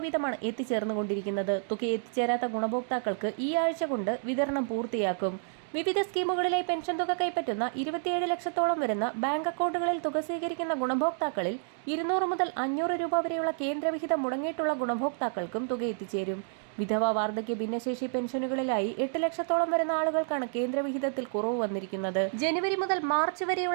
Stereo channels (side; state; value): left; silent; digital silence